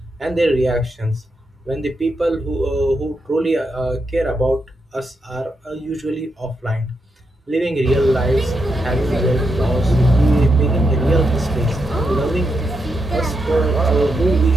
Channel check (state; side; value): normal; both; correlation 0.83